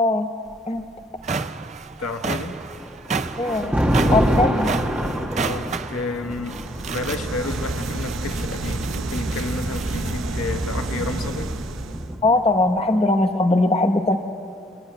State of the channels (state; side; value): normal; both; correlation 0.65